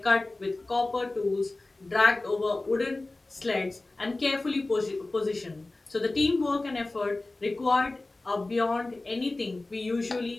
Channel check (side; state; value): right; quieter; 3.0 dB